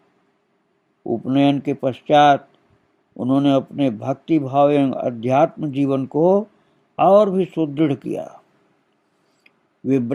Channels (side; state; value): both; identical; correlation 1.00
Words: उपनयन के पश्चात उन्होंने अपने भक्ति भाव एवं अध्यात्म जीवन को और भी सुदृढ़ किया। वे